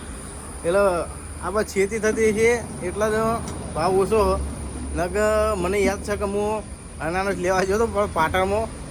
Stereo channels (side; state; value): both; identical; correlation 1.00